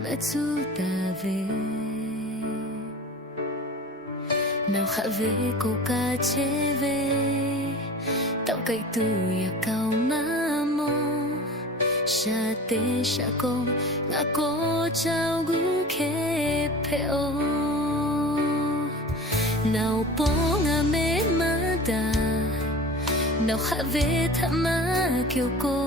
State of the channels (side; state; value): both; normal; correlation 0.37